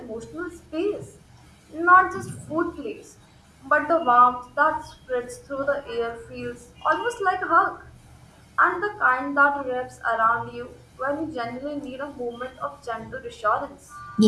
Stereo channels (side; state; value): both; identical; correlation 1.00